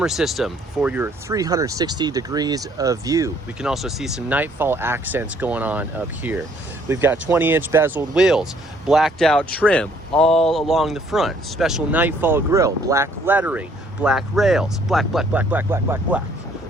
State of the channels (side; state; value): both; normal; correlation 0.63